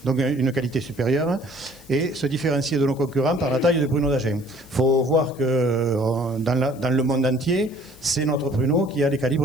Donc une qualité supérieure et se différencier de nos concurrents par la taille du pruneau d'Agen. Il faut voir que dans le monde entier, c'est notre pruneau qui a les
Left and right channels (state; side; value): noise; left; hiss, 25 dB below the sound